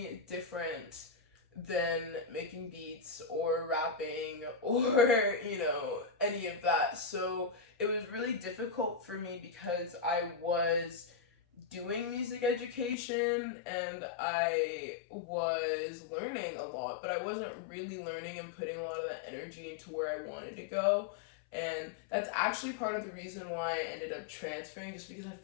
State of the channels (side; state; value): right; drops out; at 13.0 s